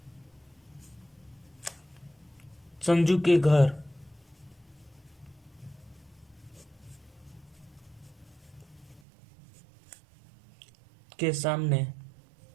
संजू के घर के सामने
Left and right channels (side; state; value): left; drops out; at 9.0 s